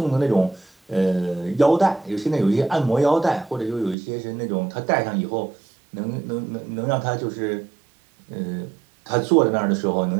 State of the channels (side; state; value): left; drops out; at 4.0 s